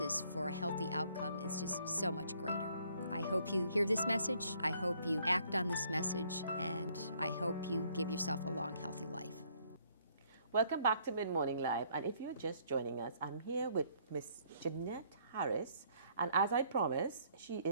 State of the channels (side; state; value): both; inverted; correlation -0.65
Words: for a healthy outcome is just so much greater. I hope you hear this message, I hope you act on this message, and I hope you give yourself a long, healthy life. Welcome back to Mid Morning Live, and if you're just joining us, I'm here with Miss Jeanette Harris, and as I promised, she